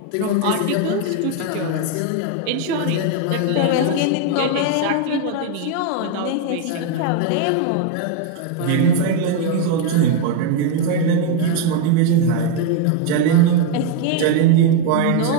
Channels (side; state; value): both; different; correlation 0.01